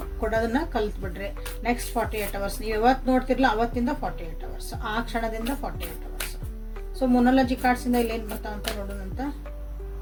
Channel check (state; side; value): identical; both; correlation 1.00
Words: ಕೊಡೋದನ್ನ ಕಲ್ತ್ಬಿಡ್ರಿ. ನೆಕ್ಸ್ಟ್ 48 hours ನೀವು ಯಾವತ್ತು ನೋಡ್ತಿರ್ಲ ಅವತ್ತಿಂದ 48 hours, ಆ ಕ್ಷಣದಿಂದ 48 hours. ಸೊ ಮೊನಾಲಜಿ ಕಾರ್ಡ್ಸಿಂದ ಇಲ್ಲೇನು ಬರ್ತಾವಂತ ನೋಡೋಣಂತ.